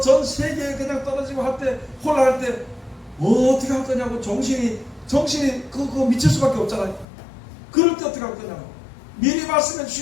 전 세계에 그냥 떨어지고 할 때 혼란할 때 어떻게 할 거냐고 정신이 그거 미칠 수밖에 없잖아요. 그럴 때 어떻게 할 거냐고. 미리 말씀해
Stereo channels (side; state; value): right; drops out; at 7.1 s